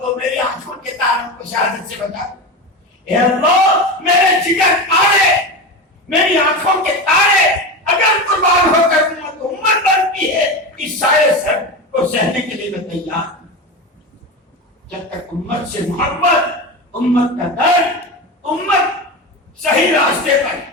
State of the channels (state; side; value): normal; both; correlation 0.22